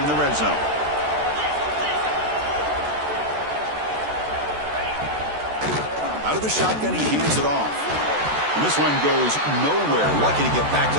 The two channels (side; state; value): left; late; 14 ms